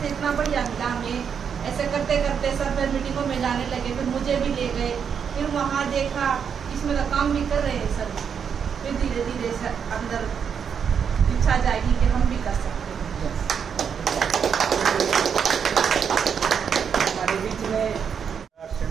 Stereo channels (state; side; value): quieter; left; 7.2 dB